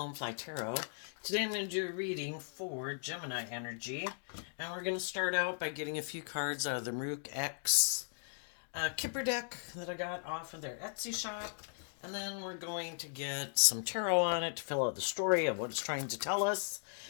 Fly Tarot. Today I'm going to do a reading for Gemini energy, and we're going to start out by getting a few cards out of the Maruk X Kipper deck that I got off of their Etsy shop, and then we're going to get some tarot on it to fill out the story of what it's trying to tell us,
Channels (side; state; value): right; silent; digital silence